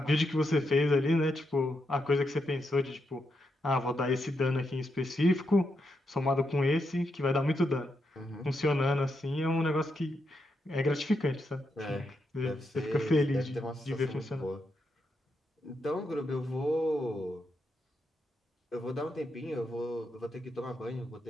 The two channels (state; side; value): normal; both; correlation 0.83